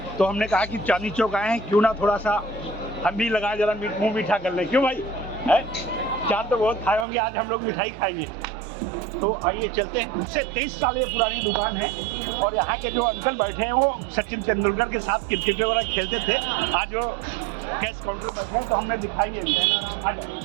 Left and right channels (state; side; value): drops out; left; at 7.1 s